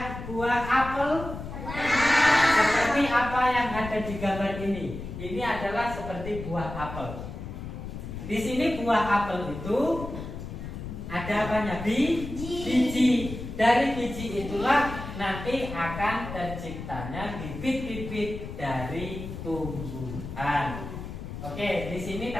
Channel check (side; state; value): left; noise; rumble, 9 dB below the sound